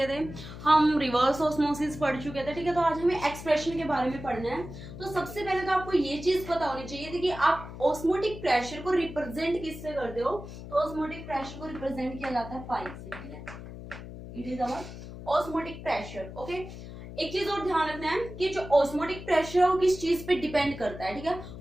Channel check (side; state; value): left; noise; hum, 12 dB below the sound